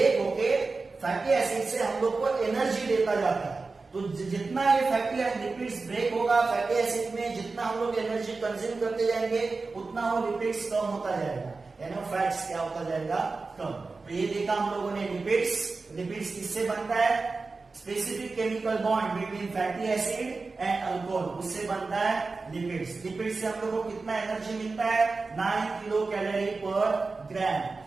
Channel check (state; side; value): quieter; left; 4.0 dB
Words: होके फैटी एसिड से हम लोग को एनर्जी देता जाता है। तो जितना ये फैटी लिपिड्स ब्रेक होगा फैटी एसिड में, जितना हम लोग एनर्जी कंज्यूम करते जाएंगे उतना वो लिपिड्स कम होता जाएगा, यानी फैट्स क्या होता जाएगा? कम। तो ये देखा हम लोगों ने लिपिड्स किससे बनता है? Specific chemical bond between fatty acid and alcohol, उससे बनता है लिपिड्स। लिपिड्स से हम लोग को कितना एनर्जी मिलता है? 9 किलो कैलोरी पर ग्राम।